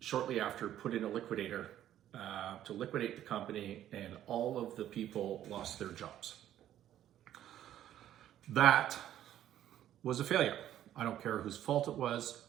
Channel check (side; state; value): left; quieter; 11.8 dB